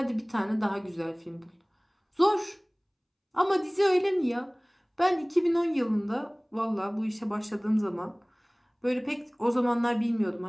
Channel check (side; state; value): both; identical; correlation 1.00